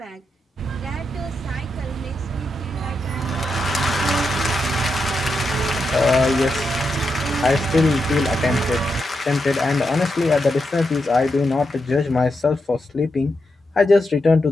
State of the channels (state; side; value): normal; both; correlation 0.85